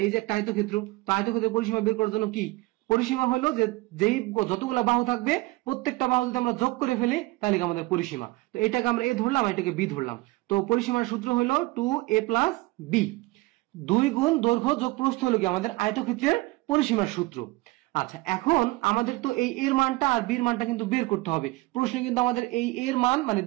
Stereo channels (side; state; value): left; quieter; 21.3 dB